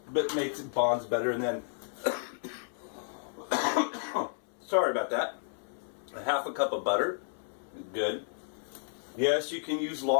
But makes it bonds better. And then, sorry about that, 1/2 cup of butter. Good. Yes, you can use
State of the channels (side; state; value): right; silent; 57 dB below the other